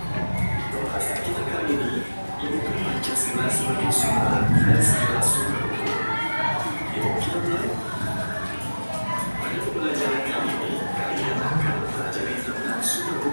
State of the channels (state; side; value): inverted; both; correlation -1.00